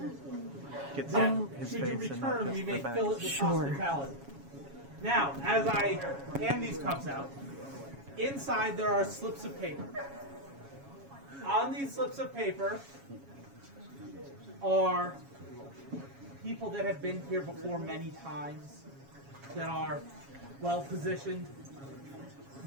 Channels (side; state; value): left; late; 7.2 ms